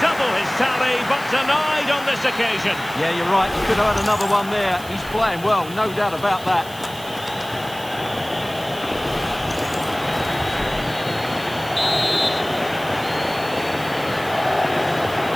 his tally, but denied on this occasion. Yeah, you're right. He could have had another one there. He's playing well, no doubt about that.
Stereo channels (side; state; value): right; noise; hiss, 17 dB below the sound